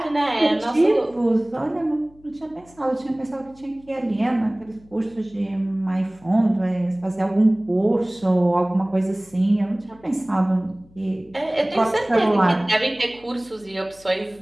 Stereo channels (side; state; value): left; noise; hum, 27 dB below the sound